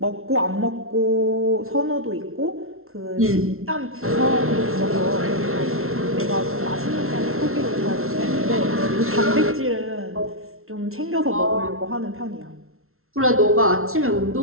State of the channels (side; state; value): left; late; 0.62 ms